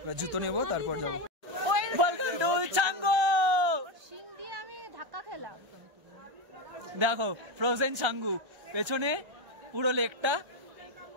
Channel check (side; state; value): left; late; 1.3 ms